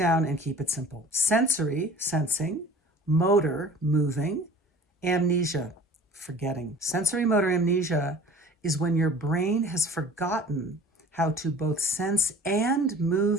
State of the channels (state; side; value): normal; both; correlation 0.46